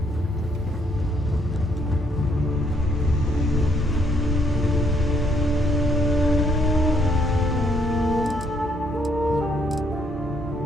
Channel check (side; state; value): both; normal; correlation 0.70